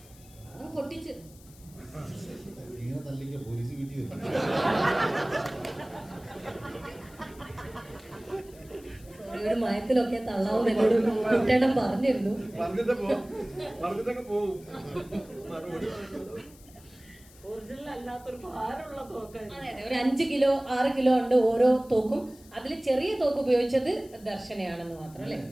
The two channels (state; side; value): noise; left; hiss, 24 dB below the sound